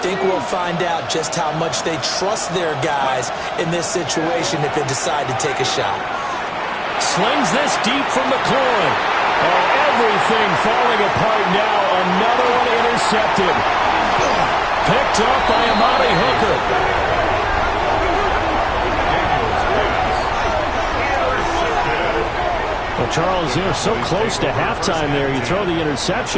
think we'll find out just how much they trust their guys in this situation if they decide to take a shot. Slings this deep from McLaurin. Oh, everything falling apart now. Another one intercepted. Picked up by Amari Hooker. Well, Charles, they're so close to halftime there. You throw the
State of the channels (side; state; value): both; identical; correlation 1.00